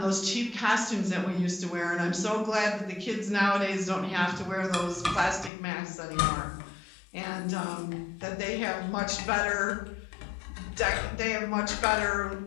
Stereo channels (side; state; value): right; drops out; at 5.5 s